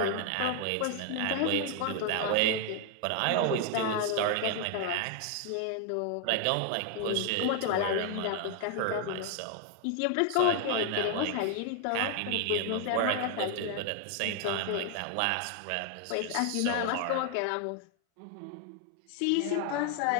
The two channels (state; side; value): different; both; correlation 0.00